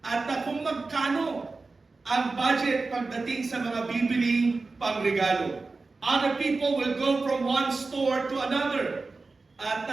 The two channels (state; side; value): quieter; left; 3.8 dB